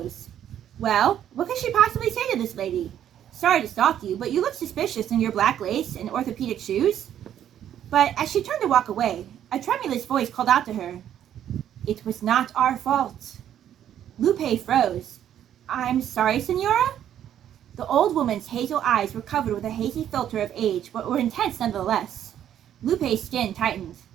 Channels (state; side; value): quieter; left; 10.4 dB